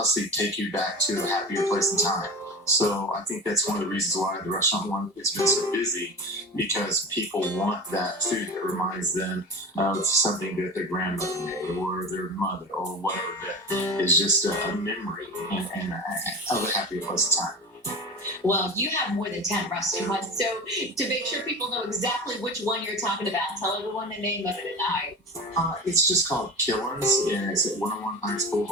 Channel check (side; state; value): both; normal; correlation 0.30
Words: take you back to a happier place in time. So I think that's one of the reasons why the restaurant one has been so busy, because people want that food that reminds them of something that their grandmother made or their mother or whatever, that is just a memory of a happier place in time. Well, you have more than 10 restaurants. So, to make sure people know exactly which one you're talking about, tell everyone the name of it tonight. It's just called Killeen'S, and it's at 101 Heights